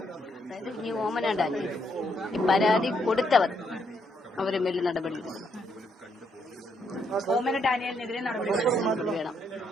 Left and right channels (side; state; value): both; normal; correlation 0.75